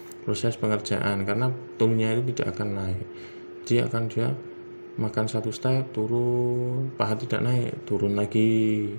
proses pengerjaan, karena toolnya itu tidak akan naik. Dia makan 1 step, turun, paha tidak naik, turun lagi,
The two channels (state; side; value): inverted; both; correlation -1.00